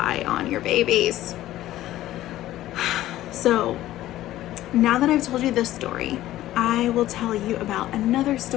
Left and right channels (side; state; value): right; quieter; 14.5 dB